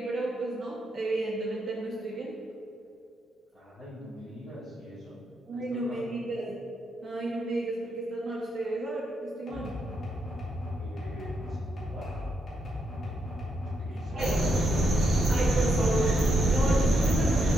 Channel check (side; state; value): both; normal; correlation 0.80